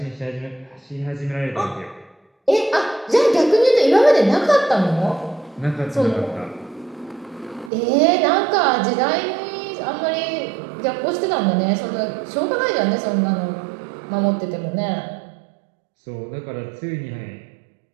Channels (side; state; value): left; drops out; at 7.7 s